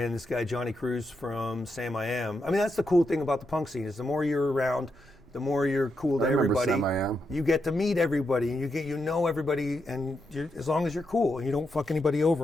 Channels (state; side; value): normal; both; correlation 0.83